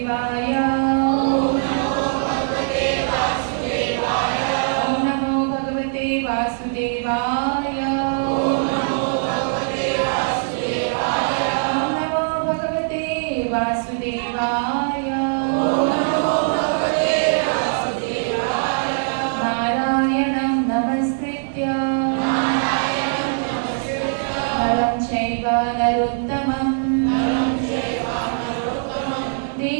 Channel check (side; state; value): left; silent; 65 dB below the other